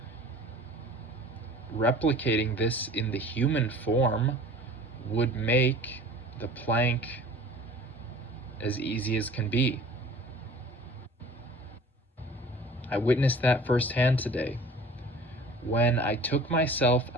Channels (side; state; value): both; normal; correlation 0.45